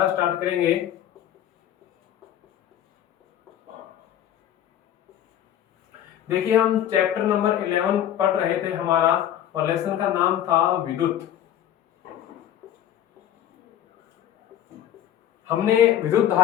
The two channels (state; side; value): quieter; right; 11.1 dB